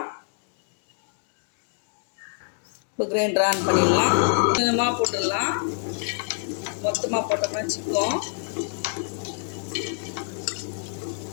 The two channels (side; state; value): right; silent; 61 dB below the other